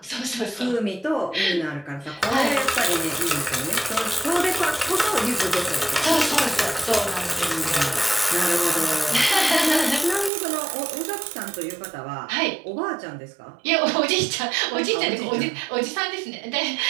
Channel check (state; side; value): drops out; left; at 10.3 s